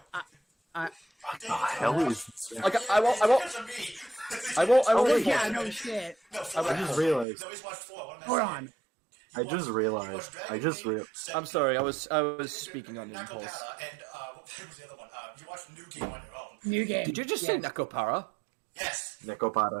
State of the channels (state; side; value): drops out; left; at 7.2 s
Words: the hell is? Like, I won't. Oh reinforce yeah, it. no shit. No, I just realized. No, he's watched 4. What am I Hold saying? on. I just realized. I'm sorry. I was speaking on impulse. Nakopara and what was the other one? You watched New Game on your own. New game. Did you just say Yes. Nakopara? Yes.